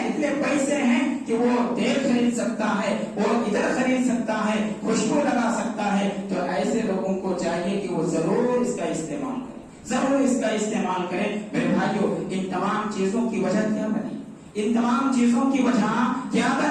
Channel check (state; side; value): identical; both; correlation 1.00